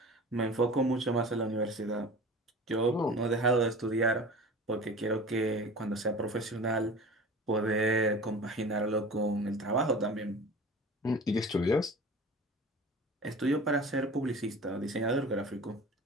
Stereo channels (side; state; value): both; normal; correlation 0.39